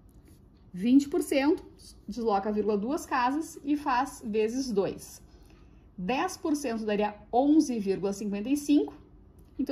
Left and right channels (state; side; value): identical; both; correlation 1.00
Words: 20%, desloca a vírgula duas casas e faz vezes 2. 10% daria 11,55.